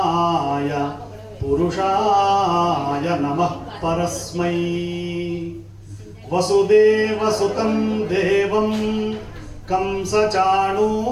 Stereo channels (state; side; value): identical; both; correlation 1.00